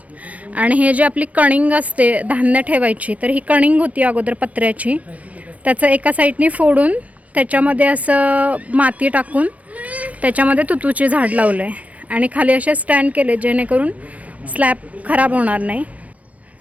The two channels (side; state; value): left; late; 0.068 ms